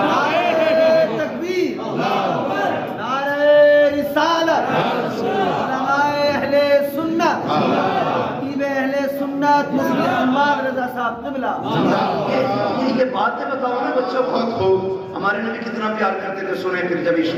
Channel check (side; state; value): both; identical; correlation 1.00